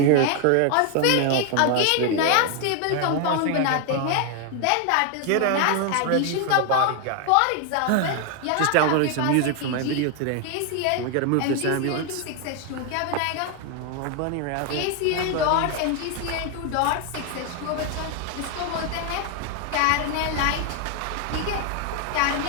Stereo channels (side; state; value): both; different; correlation 0.01